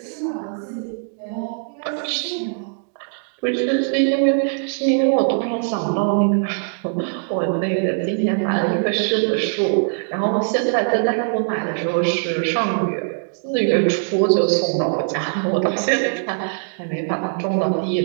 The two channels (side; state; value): left; silent; digital silence